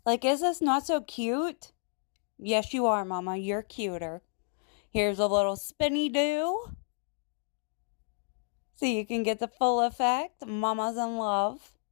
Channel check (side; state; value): right; silent; 57 dB below the other